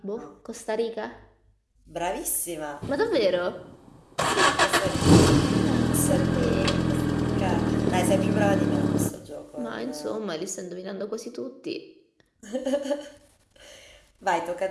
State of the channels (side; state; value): both; identical; correlation 1.00